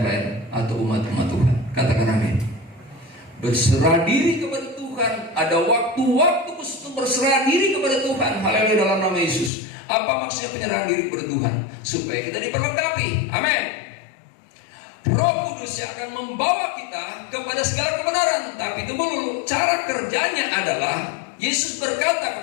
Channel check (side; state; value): right; drops out; at 9.5 s